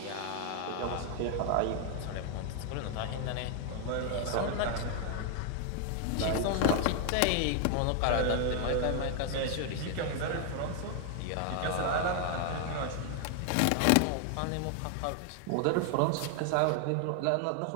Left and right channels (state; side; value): different; both; correlation 0.00